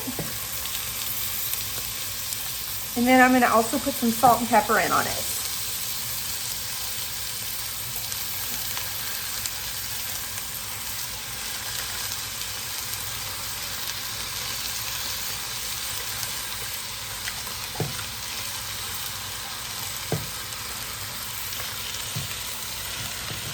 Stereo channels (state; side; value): identical; both; correlation 1.00